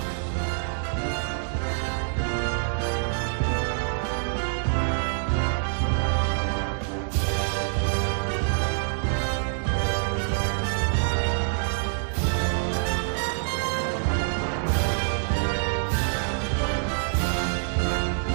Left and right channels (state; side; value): silent; left; digital silence